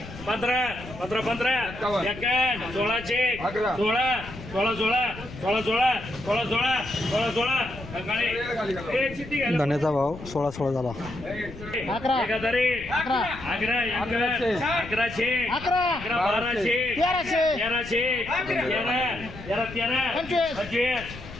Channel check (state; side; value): noise; left; rumble, 14 dB below the sound